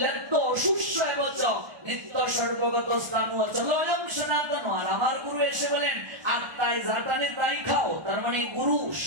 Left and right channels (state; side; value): late; left; 1.2 ms